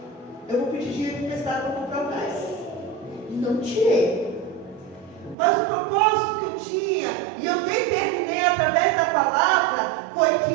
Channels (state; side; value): drops out; left; at 5.4 s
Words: Eu vou pedir dinheiro emprestado para comprar o gás. E não tirei. Mas o propósito que eu tinha, e eu determinei através da palavra, foi